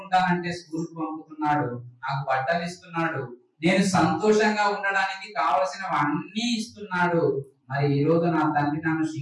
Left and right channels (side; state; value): both; identical; correlation 1.00